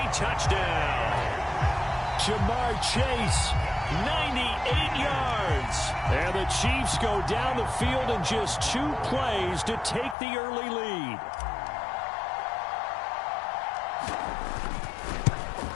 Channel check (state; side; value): drops out; right; at 10.2 s